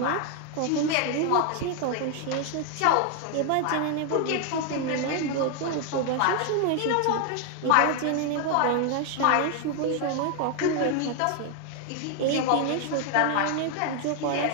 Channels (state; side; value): different; both; correlation 0.00